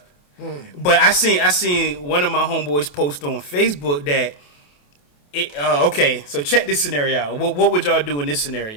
But I seen one of my homeboys post on Facebook that, okay, so check this scenario out. What would y'all do in this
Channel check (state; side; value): late; right; 28 ms